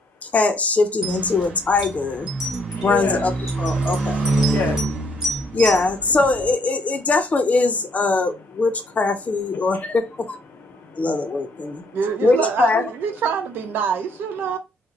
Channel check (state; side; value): normal; both; correlation 0.68